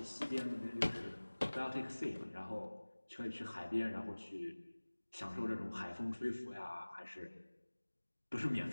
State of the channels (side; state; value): both; inverted; correlation -1.00